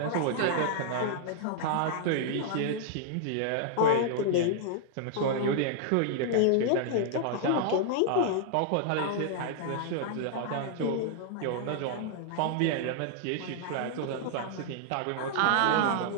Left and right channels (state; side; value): different; both; correlation -0.01